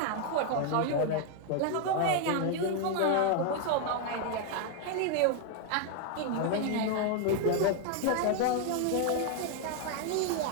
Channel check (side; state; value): both; different; correlation 0.00